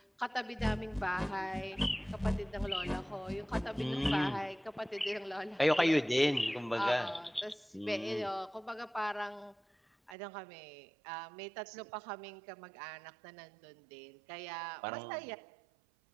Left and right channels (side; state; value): left; drops out; at 10.2 s